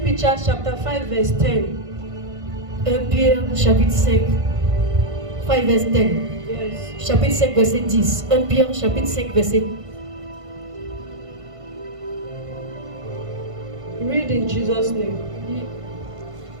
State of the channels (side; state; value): left; late; 1.5 ms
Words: Peter chapter 5 verse 10. 1 Pierre chapitre 5, 5 verse 10. Yes. Chapitre 5 verset 10. 1 Pierre chapitre 5 verset. Read in Jesus' name.